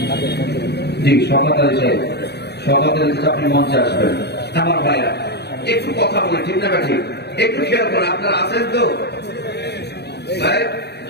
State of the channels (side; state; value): right; late; 0.48 ms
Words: জি, শওকত আলী সাহেব, শওকত আলী চাচা আপনি মঞ্চে আসবেন। আমার ভাইরা একটু কথা বলে, ঠিক না ঠিক, একটু খেয়াল করেন, আপনারা আছেন তো ভাই?